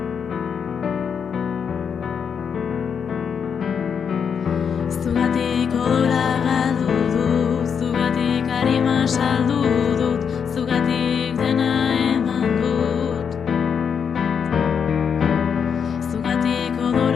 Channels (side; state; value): right; quieter; 6.9 dB